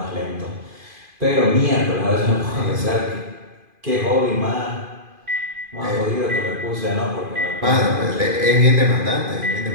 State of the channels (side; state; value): left; late; 2.5 ms